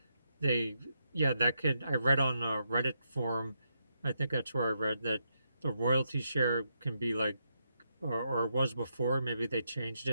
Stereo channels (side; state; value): both; inverted; correlation -0.81